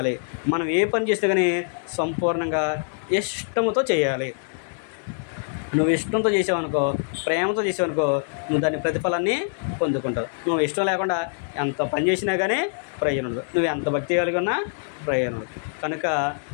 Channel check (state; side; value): silent; right; digital silence